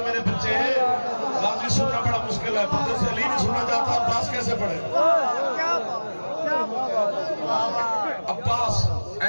میرے بچے, غازی سننا بڑا مشکل ہے. بندے سے علی نہیں سننا چاہتا, عباس کیسے پڑھے؟ عباس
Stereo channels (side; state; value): both; inverted; correlation -1.00